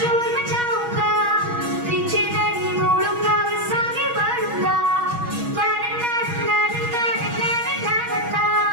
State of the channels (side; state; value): left; late; 6.2 ms